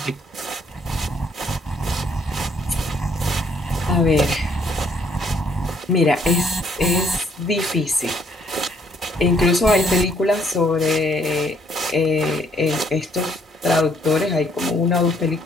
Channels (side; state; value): both; normal; correlation 0.67